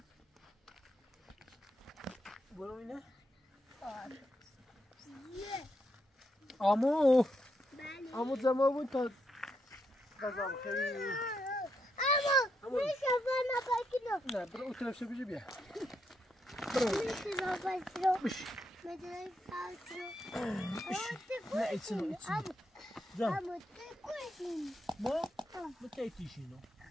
برو اینه on. آمو آمو زمان بود تا غذا بخیری اما میشه بنا بکنم نه برو اون طرف شو بیا میشه بنا بش مدرای نه ایتسنو جان اما تکوشیم ما بکیتیشینو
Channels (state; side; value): normal; both; correlation 0.80